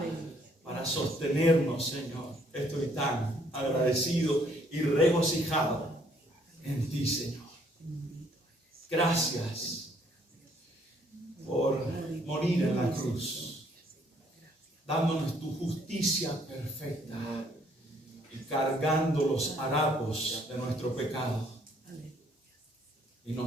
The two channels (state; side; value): normal; both; correlation 0.65